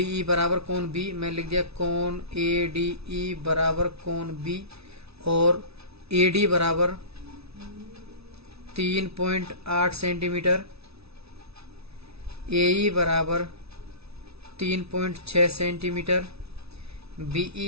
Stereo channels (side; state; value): left; late; 0.78 ms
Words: बराबर कोण बी। मैं लिख दिया कोण ADE बराबर कोण बी और AD बराबर 3.8 सेंटीमीटर, AE बराबर 3.6 सेंटीमीटर,